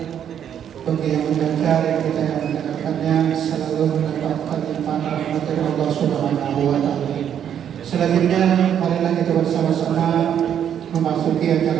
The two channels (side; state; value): left; quieter; 9.2 dB